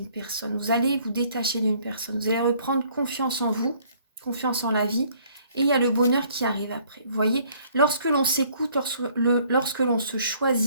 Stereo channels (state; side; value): inverted; both; correlation -0.61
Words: personne. Vous allez vous détacher d'une personne. Vous allez reprendre confiance en vous, confiance en la vie. Et il y a le bonheur qui arrive après. Vous voyez, lorsque l'on s'écoute, lorsque l'on se